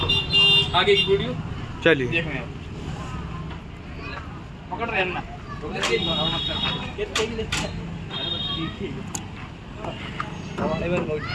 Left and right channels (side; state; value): both; identical; correlation 1.00